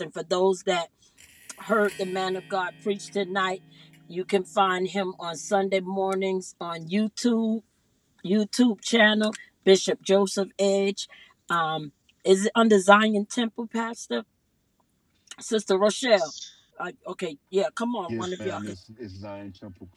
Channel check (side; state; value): both; identical; correlation 1.00